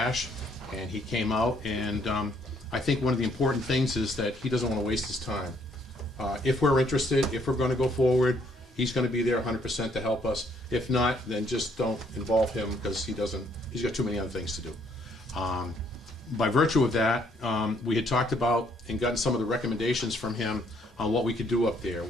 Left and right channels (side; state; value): both; normal; correlation 0.67